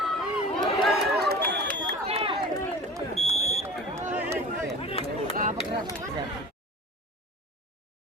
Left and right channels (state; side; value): normal; both; correlation 0.39